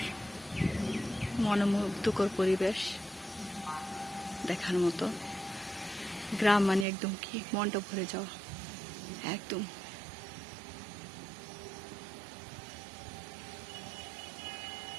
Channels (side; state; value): left; drops out; at 6.9 s